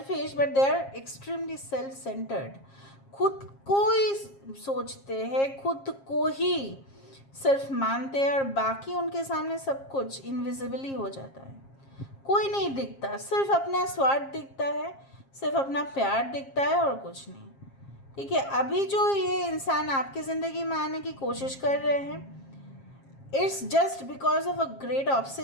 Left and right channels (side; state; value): right; late; 7.4 ms